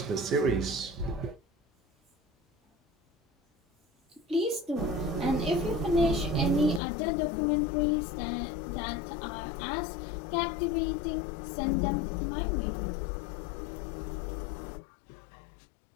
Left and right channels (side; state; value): right; drops out; at 6.8 s